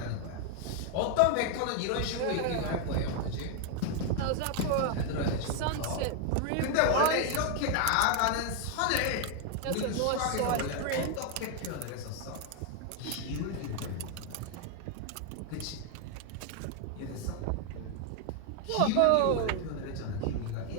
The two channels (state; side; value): different; both; correlation 0.01